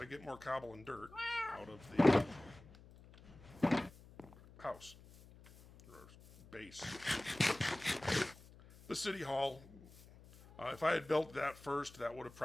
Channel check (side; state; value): left; noise; hum, 21 dB below the sound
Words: get more cobble and dirt out of the house. Or base. The city hall. If I had built that first, that would have